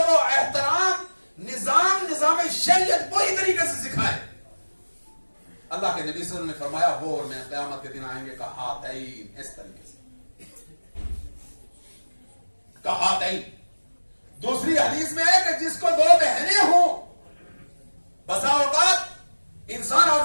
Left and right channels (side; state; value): both; inverted; correlation -1.00